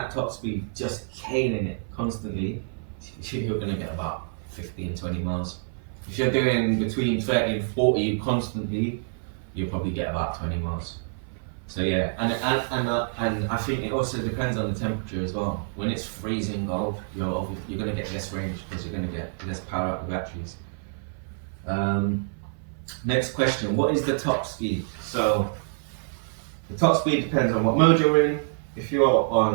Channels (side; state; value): left; silent; 60 dB below the other